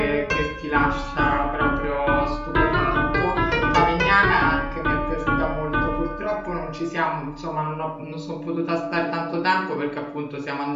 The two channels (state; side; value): identical; both; correlation 1.00